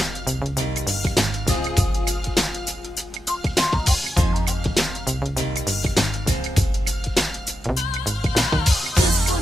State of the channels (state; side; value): normal; both; correlation 0.87